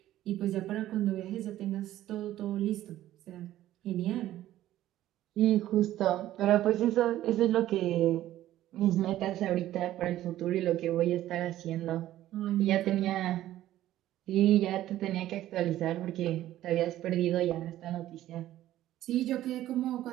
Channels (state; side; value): quieter; left; 13.7 dB